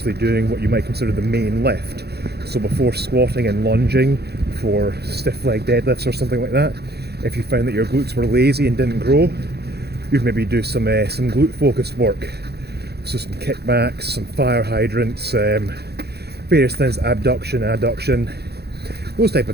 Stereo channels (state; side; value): late; left; 0.47 ms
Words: doing what you might consider the main lift. So before squatting and lunging, for stiff leg deadlifts or something like that, if you found that your glutes were lazy and didn't grow, you'd maybe do some glute focused work. So some kickbacks, some fire hydrants, various things, abduction, adduction, those type